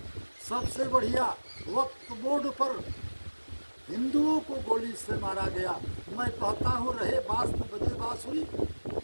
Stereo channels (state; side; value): inverted; both; correlation -1.00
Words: सबसे बढ़िया, वक्त बोर्ड पर हिंदुओं को गोली से मारा गया। मैं कहता हूँ, रहे बास तो बजे बास हुई।